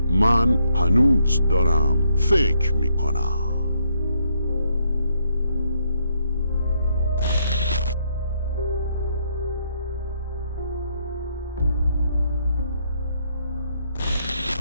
من هنوز دارم فکر می کنم.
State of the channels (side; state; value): both; inverted; correlation -0.74